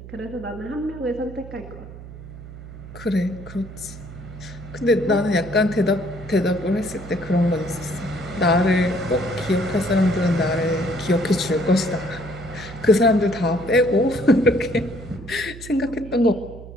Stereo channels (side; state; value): right; noise; hum, 14 dB below the sound